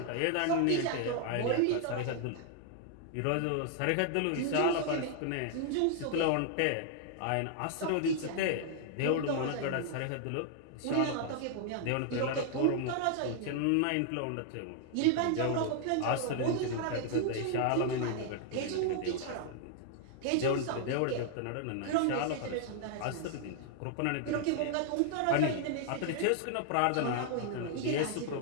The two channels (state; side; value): different; both; correlation 0.00